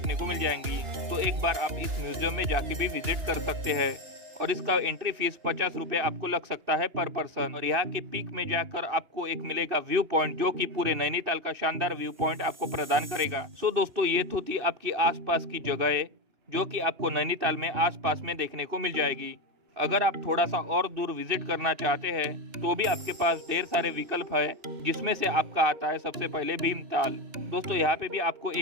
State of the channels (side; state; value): left; late; 2.8 ms